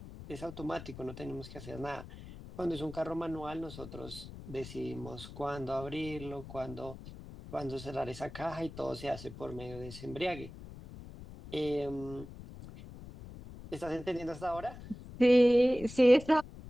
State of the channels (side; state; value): left; noise; rumble, 14 dB below the sound